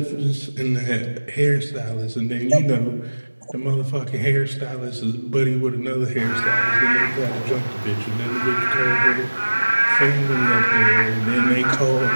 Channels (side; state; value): both; inverted; correlation -1.00